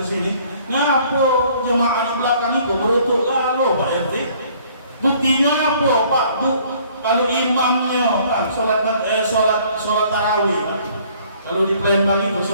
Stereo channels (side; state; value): both; inverted; correlation -0.58